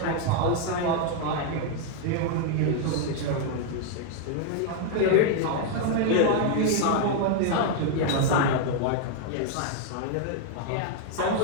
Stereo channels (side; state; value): both; different; correlation 0.00